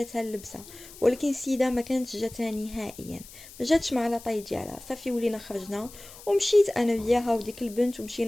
اللبسه، ولكن السيده ما كانتش جاتها نهائيا، ما جاتش مع لاطاي ديالها. صافي ولينا خرجنا ومشيت انا وياها وديك البنت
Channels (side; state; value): left; noise; hiss, 18 dB below the sound